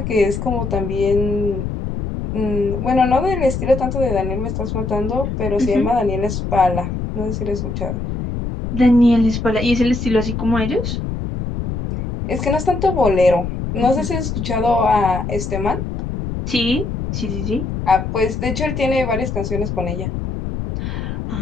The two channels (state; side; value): noise; left; rumble, 4 dB below the sound